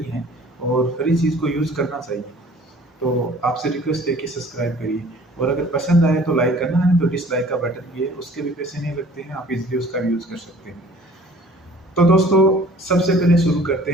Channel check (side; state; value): both; normal; correlation 0.51